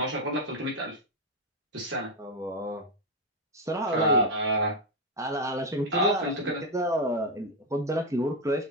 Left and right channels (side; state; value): both; normal; correlation 0.05